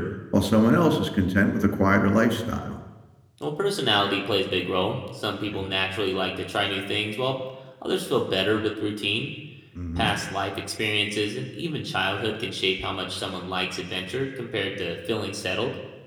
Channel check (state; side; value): identical; both; correlation 1.00